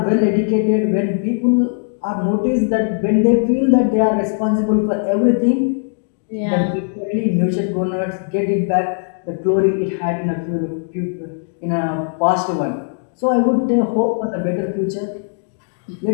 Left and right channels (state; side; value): silent; right; digital silence